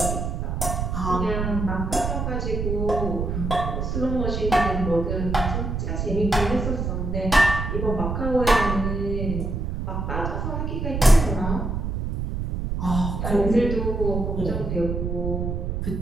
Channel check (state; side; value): noise; right; rumble, 2 dB below the sound